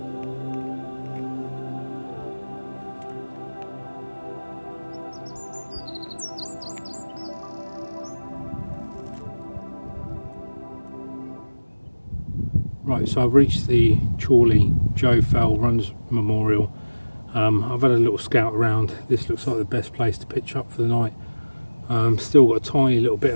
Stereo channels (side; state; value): both; inverted; correlation -1.00